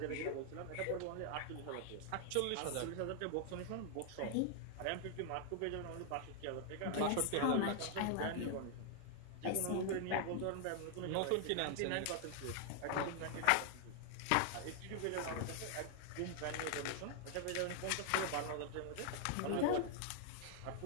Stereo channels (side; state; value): both; different; correlation 0.00